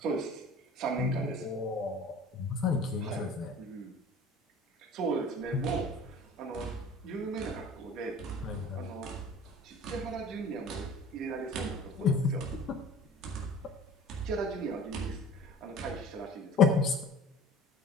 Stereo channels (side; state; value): both; normal; correlation 0.44